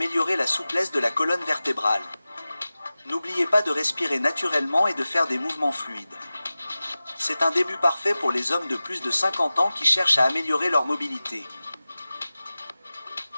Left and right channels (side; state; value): both; inverted; correlation -0.96